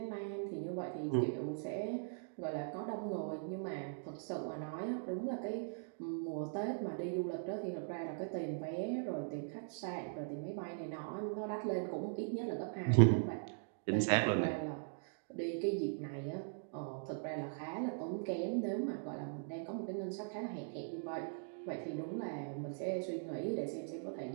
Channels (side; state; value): left; silent; digital silence